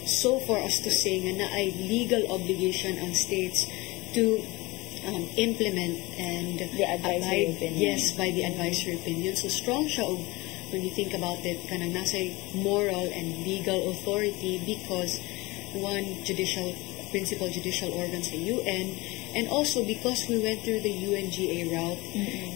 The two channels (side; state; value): right; quieter; 22.6 dB